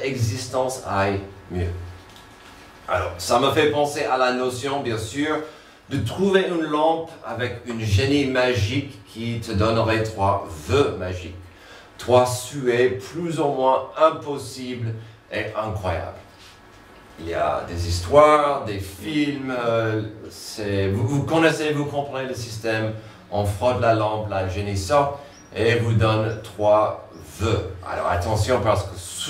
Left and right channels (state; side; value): identical; both; correlation 1.00